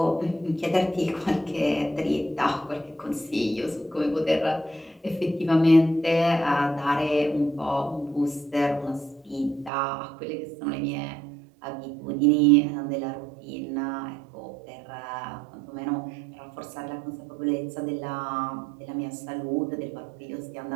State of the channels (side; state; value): left; drops out; at 9.7 s